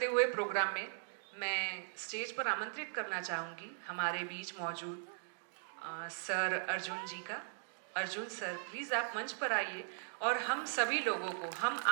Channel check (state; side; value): silent; left; digital silence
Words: हुए प्रोग्राम में मैं स्टेज पर आमंत्रित करना चाहूँगी हमारे बीच मौजूद सर अर्जुन जी का। अर्जुन सर, प्लीज़ आप मंच पर आइए और हम सभी लोगों को, हम